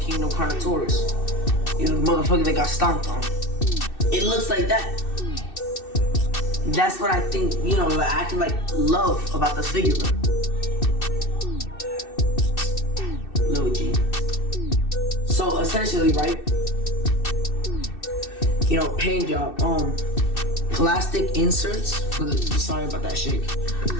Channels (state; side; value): late; right; 2.6 ms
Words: Carnotaurus. You know, the motherfucker that got stomped on. It looks like that. That's what I think, you know, like, I can like love about this figure, bro. Lil G. So essentially, right? You know, paint job. Plastic inserts for the. Sorry about that shake.